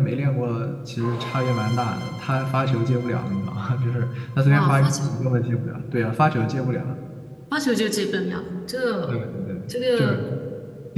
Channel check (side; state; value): both; identical; correlation 1.00